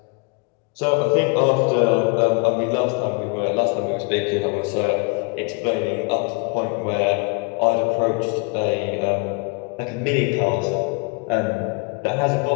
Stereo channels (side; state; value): right; quieter; 31.1 dB